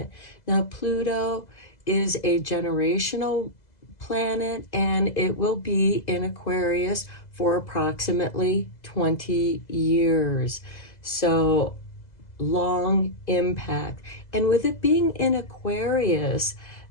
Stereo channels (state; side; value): late; right; 2.0 ms